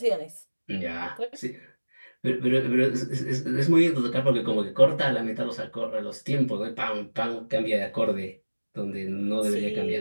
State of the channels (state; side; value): inverted; both; correlation -1.00